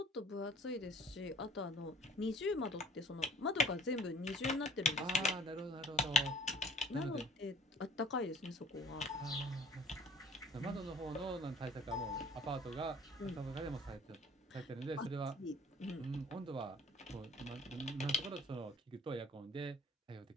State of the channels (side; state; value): both; normal; correlation 0.51